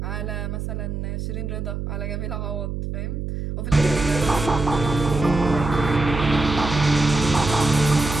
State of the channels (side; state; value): right; noise; hum, 4 dB below the sound